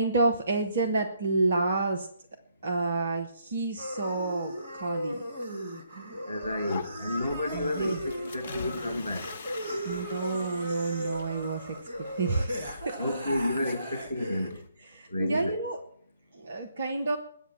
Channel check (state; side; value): inverted; both; correlation -0.72